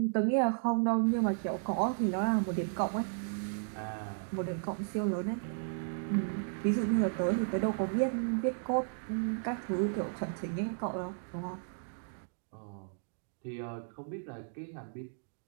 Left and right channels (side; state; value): left; silent; digital silence